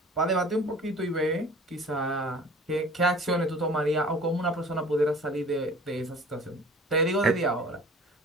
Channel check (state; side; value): normal; both; correlation 0.45